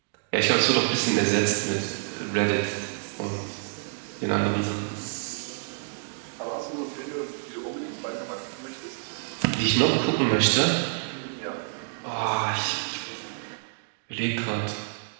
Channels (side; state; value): left; silent; digital silence